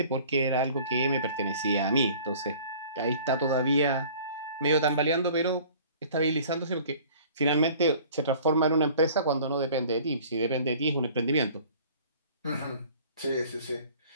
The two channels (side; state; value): both; inverted; correlation -0.49